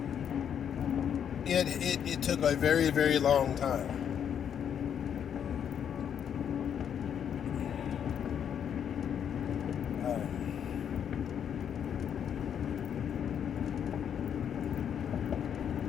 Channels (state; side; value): quieter; right; 8.5 dB